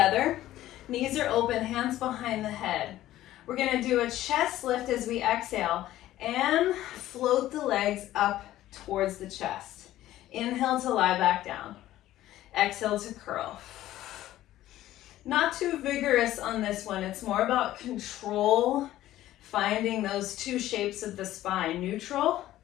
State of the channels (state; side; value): quieter; right; 14.3 dB